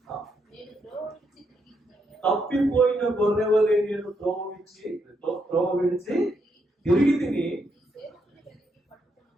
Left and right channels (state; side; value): normal; both; correlation 0.78